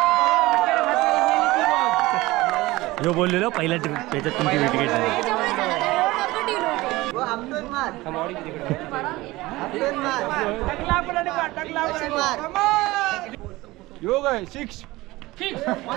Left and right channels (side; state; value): left; quieter; 19.6 dB